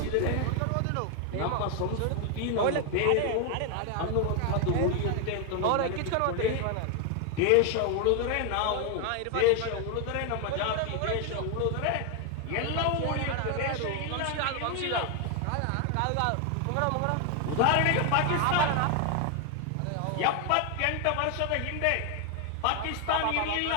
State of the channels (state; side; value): different; both; correlation 0.01